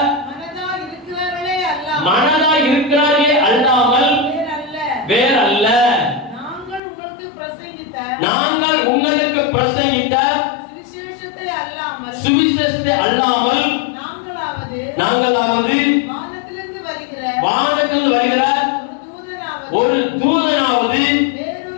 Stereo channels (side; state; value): right; drops out; at 6.8 s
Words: மனதா இருக்கிறார்களே அல்லாமல் வேறல்ல. நாங்கள் உங்களுக்கு பிரசங்கித்த சுவிசேஷத்தை அல்லாமல் நாங்களாவது வானத்திலிருந்து வருகிற ஒரு தூதனாவது